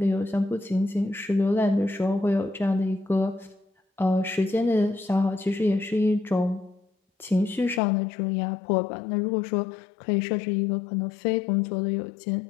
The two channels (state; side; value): drops out; right; at 7.8 s